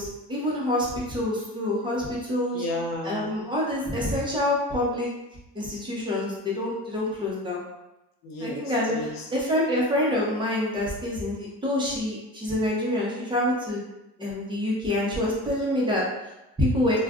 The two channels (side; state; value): both; normal; correlation 0.34